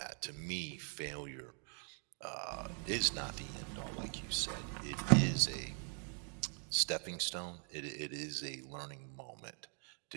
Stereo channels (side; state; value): left; quieter; 39.8 dB